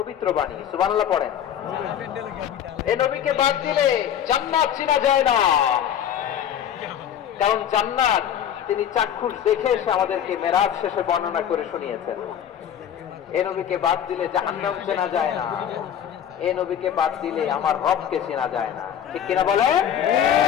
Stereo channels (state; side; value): quieter; right; 9.6 dB